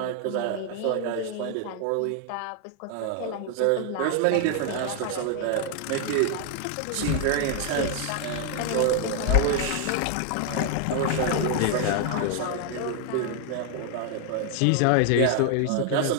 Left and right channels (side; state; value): both; different; correlation 0.00